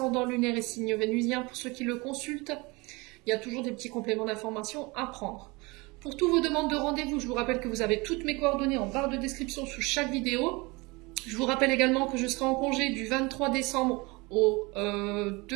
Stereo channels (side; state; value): left; quieter; 25.4 dB